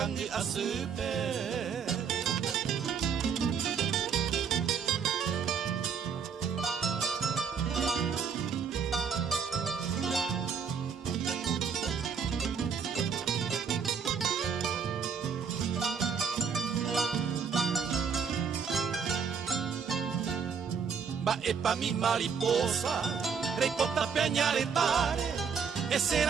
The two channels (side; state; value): left; quieter; 6.4 dB